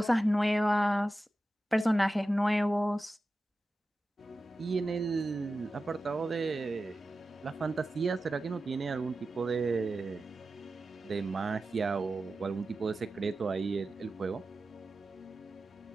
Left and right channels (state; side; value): normal; both; correlation 0.93